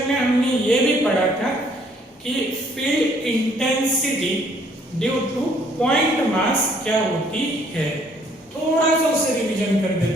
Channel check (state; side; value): normal; both; correlation 0.63